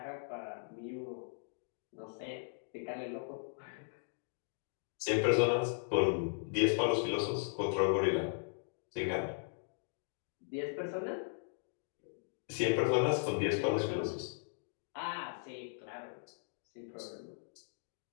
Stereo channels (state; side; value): silent; right; digital silence